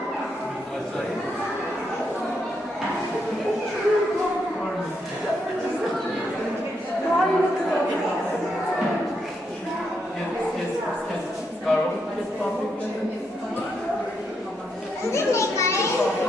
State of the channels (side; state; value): both; normal; correlation 0.79